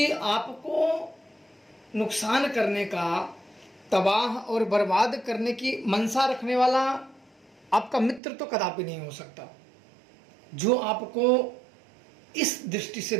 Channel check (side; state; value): left; drops out; at 8.2 s